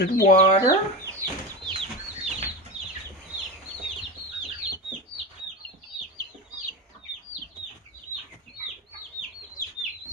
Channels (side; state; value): both; normal; correlation 0.22